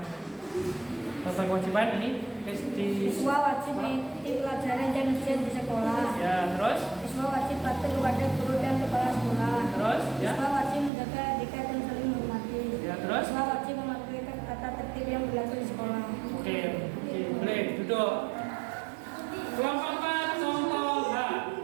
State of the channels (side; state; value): left; drops out; at 10.9 s